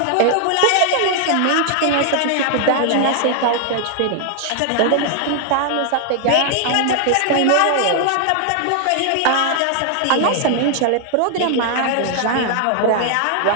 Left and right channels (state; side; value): different; both; correlation 0.00